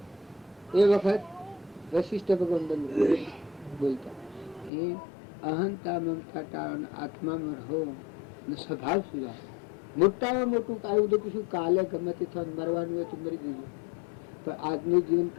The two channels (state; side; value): drops out; right; at 4.7 s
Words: એ વખત વશિષ્ઠ ભગવાન બોલતા એ અહંતા મમતા ટાળો, આત્મામાં રહો, સ્વભાવ સુધાર. મોટામાં મોટું આવ્યું તો કશું કાલે ગમે તે થવાનું મરવાનું હોય તો મરી જઈએ, પણ આજનું જીવન